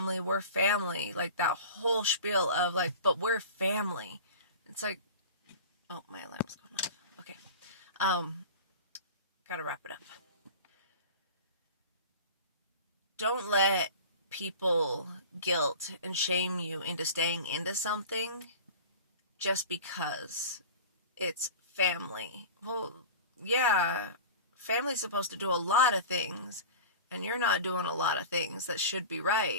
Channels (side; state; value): both; inverted; correlation -0.36